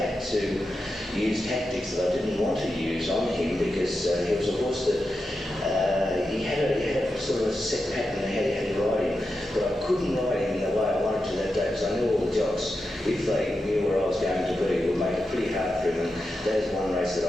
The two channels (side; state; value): both; normal; correlation 0.89